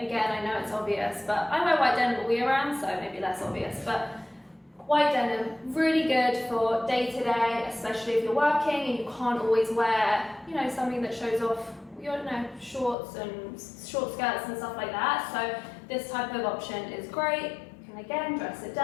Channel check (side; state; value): right; drops out; at 13.0 s